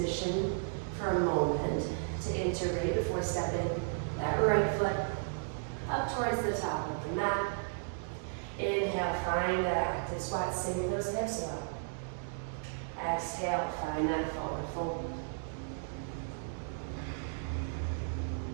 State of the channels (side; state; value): left; silent; digital silence